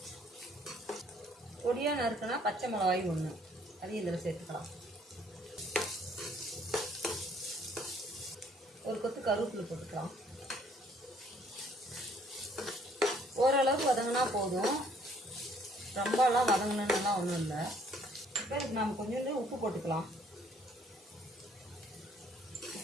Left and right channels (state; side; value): normal; both; correlation 0.62